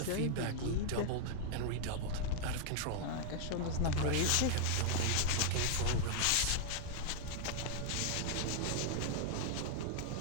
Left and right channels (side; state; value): both; different; correlation 0.00